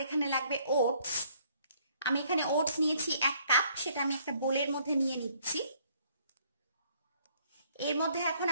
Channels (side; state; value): both; inverted; correlation -0.64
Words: এখানে লাগবে ওটস। আমি এখানে ওটস নিয়েছি 1 কাপ, সেটা আমি একটা বোলের মধ্যে নিয়ে নিচ্ছি। এর মধ্যে এখন